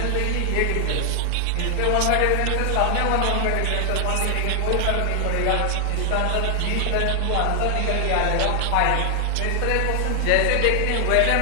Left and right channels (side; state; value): both; different; correlation 0.00